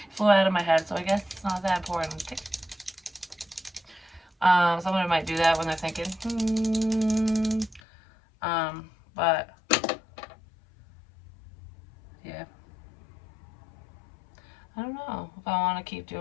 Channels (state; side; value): drops out; right; at 7.8 s